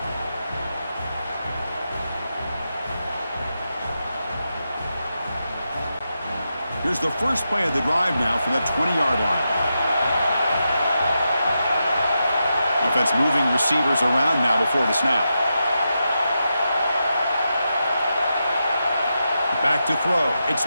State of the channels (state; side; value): inverted; both; correlation -0.87